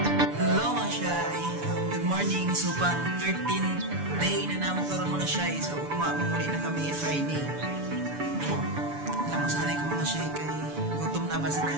So, pang 13th day na naman karoon mga shy. So, mamuli na kami Friday. Namasanay ko mga shy kay gutom na ba sa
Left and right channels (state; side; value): late; left; 6.9 ms